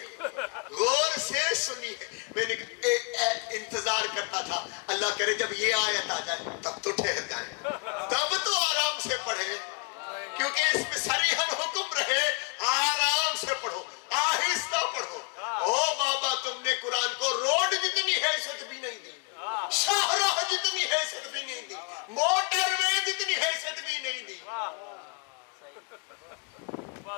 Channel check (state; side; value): quieter; right; 32.7 dB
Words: غور سے سنی ہے. میں نے انتظار کرتا تھا اللہ کرے جب یہ آیت آ جائے تب تو ٹھہر جائیں, تب تو آرام سے پڑھیں, کیونکہ اس میں صریحاً حکم رہے آرام سے پڑھو, آہستہ پڑھو. او بابا, تم نے قرآن کو روڈ جتنی حیثیت بھی نہیں دی, شاہراہ جتنی حیثیت بھی نہیں دی, موٹر وے جتنی حیثیت بھی نہیں دی,